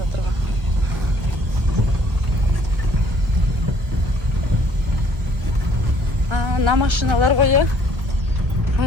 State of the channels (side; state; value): left; late; 1.3 ms